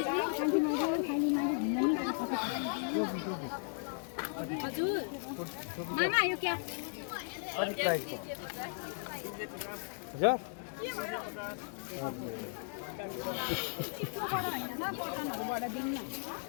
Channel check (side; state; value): right; silent; 54 dB below the other